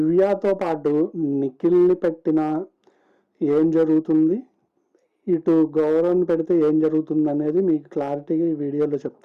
పాటు నిఖిల్ని పెట్టినా ఏం జరుగుతుంది, ఇటు గౌరవ్ని పెడితే ఏం జరుగుతుంది అనేది మీకు క్లారిటీగా ఈ వీడియోలో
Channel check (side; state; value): both; identical; correlation 1.00